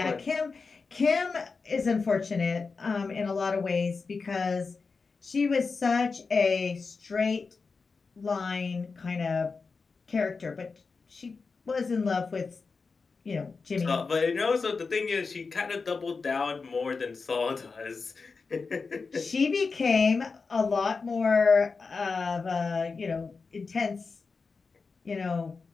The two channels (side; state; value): right; quieter; 4.6 dB